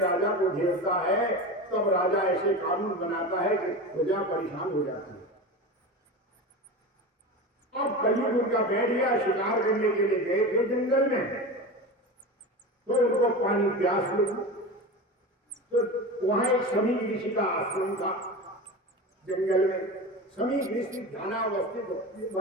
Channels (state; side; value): normal; both; correlation 0.27